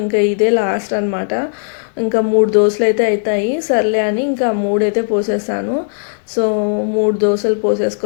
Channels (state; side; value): silent; right; 66 dB below the other